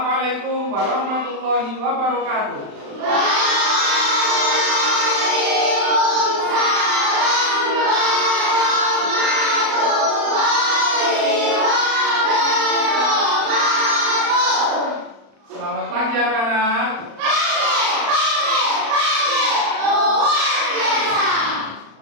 warahmatullahi wabarakatuh. Selamat pagi anak-anak.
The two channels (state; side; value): late; left; 35 ms